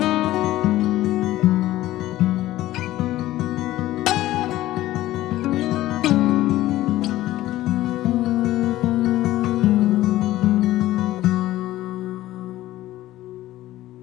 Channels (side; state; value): right; quieter; 15.4 dB